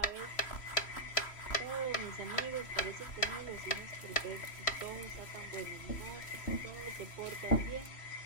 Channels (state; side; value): late; right; 3.1 ms